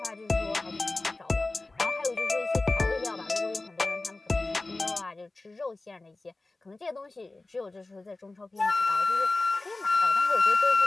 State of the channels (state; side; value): quieter; right; 3.1 dB